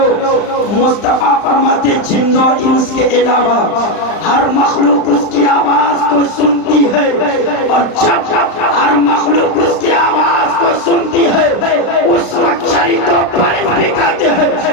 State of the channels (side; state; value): right; late; 35 ms